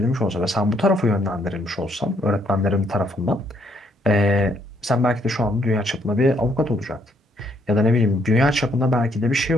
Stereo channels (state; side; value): normal; both; correlation 0.70